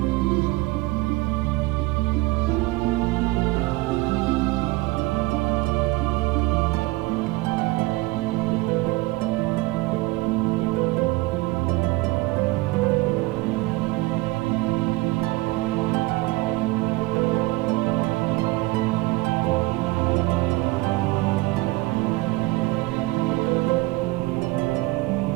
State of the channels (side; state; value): left; quieter; 20.7 dB